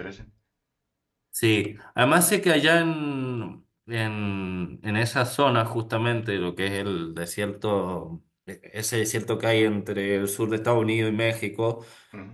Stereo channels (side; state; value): both; identical; correlation 1.00